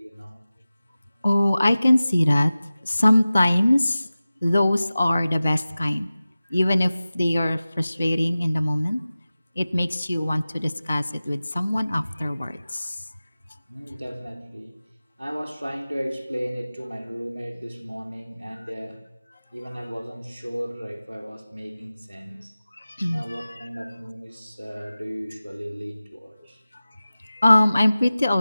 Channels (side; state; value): both; inverted; correlation -0.96